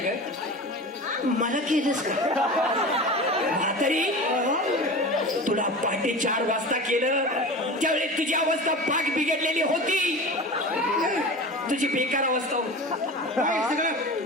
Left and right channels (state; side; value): normal; both; correlation 0.32